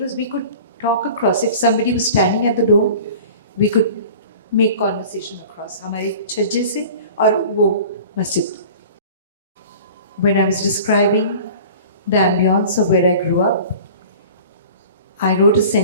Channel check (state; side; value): inverted; both; correlation -0.42